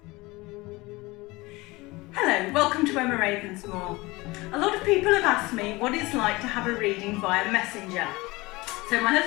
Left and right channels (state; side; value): quieter; right; 22.0 dB